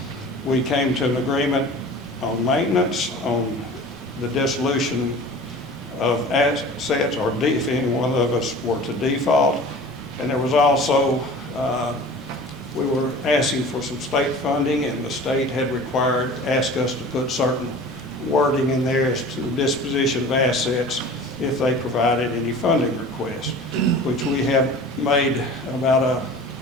We came to an agreement on maintenance, on the dissolution of assets, or if any one of us were to default. And there was also, we were asking for some state funding, and the state had asked us to put certain wording in there as to the disposition of assets if they provided any funding requests, which we have made about a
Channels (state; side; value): normal; both; correlation 0.41